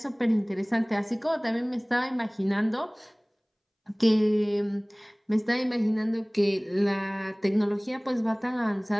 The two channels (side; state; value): both; identical; correlation 1.00